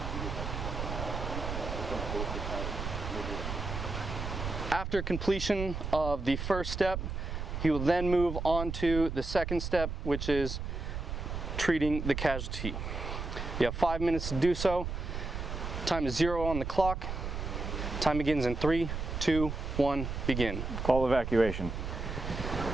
After completion of the first step, he will then move on to the second step, which is treating the casualty. You have 5 minutes to do so. Time is 0 on the clock. Time begins in 3, 2, 1, begin. Call evacuation.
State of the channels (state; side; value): noise; right; rumble, 4 dB below the sound